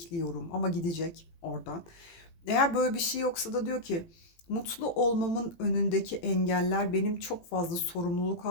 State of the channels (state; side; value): late; right; 17 ms